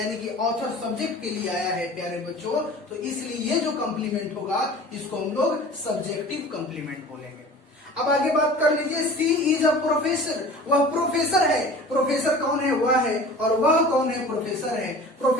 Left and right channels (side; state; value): both; normal; correlation 0.41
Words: कि ऑथर सब्जेक्ट के लिए आया है प्यारे बच्चों। तो इसलिए ये जो कॉम्प्लीमेंट होगा इसको हम लोग सब्जेक्टिव कॉम्प्लीमेंट बोलेंगे। अब आगे बात कर लीजिए, सी इज अ प्रोफेसर, वह प्रोफेसर है। प्रोफेसर कौन है, वह है, और वह कौन है, प्रोफेसर है।